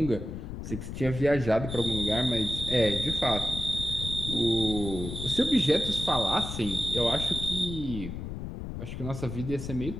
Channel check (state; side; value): noise; left; rumble, 7 dB below the sound